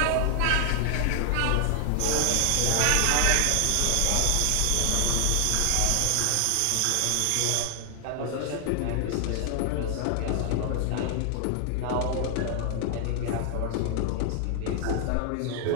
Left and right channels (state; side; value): different; both; correlation 0.00